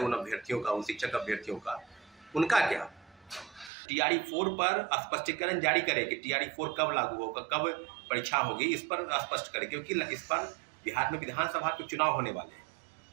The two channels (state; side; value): drops out; left; at 3.7 s